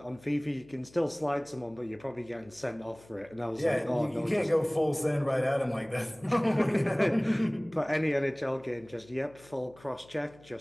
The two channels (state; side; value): noise; left; hum, 25 dB below the sound